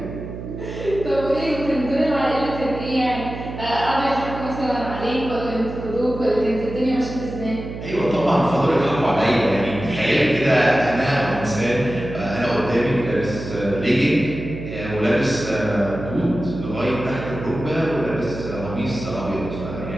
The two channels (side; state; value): right; noise; hum, 9 dB below the sound